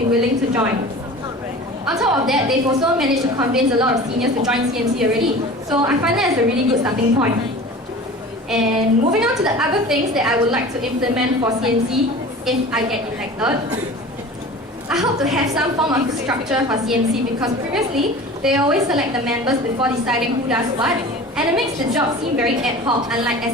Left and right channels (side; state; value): both; normal; correlation 0.38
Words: willing to join. On top of that, they've also managed to convince a lot of seniors to join CMC already, so I find that as a really good starting point. And moving on to the other things that I would like to implement for CMC if I get elected. I hope to have some form of structure for CMC because previously, they always select the members before deciding who does what, and it makes the job seem very ad hoc, unlike